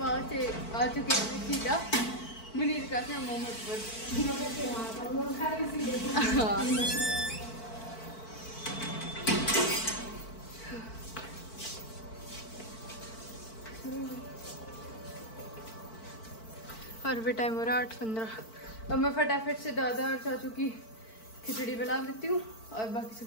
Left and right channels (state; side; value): late; right; 4.5 ms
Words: आ चुके हैं सीधा मुनीर का क्या मोहम्मद पर। और भी टाइम हो रहा है 8:15। अब मैं फटाफट से दादा और चाचू की खिचड़ी बना देती हूँ और बाकी